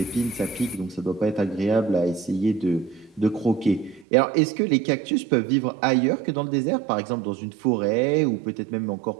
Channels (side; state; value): left; drops out; at 4.0 s